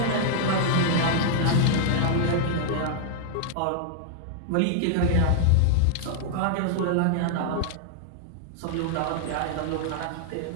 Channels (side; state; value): both; different; correlation -0.01